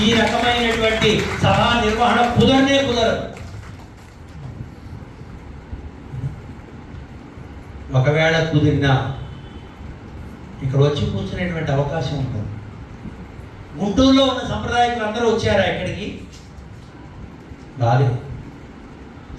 ఈ రకమైనటువంటి సభా నిర్వహణ కుదరదు. ఒకవేళ కుదిరినా ఇక్కడ వచ్చి కూర్చునేటువంటి అవకాశం ఉంటుంది. గుంటూరులో ఉన్న సంప్రదాయకులు అందరూ వచ్చారా ఇక్కడికి? రాలేదు.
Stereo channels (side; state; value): both; identical; correlation 1.00